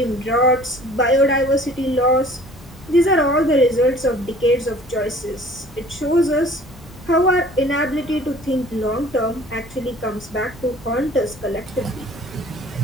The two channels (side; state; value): both; normal; correlation 0.50